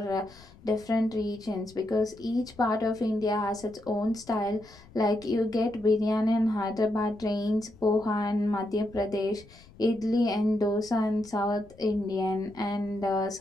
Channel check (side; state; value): left; noise; rumble, 23 dB below the sound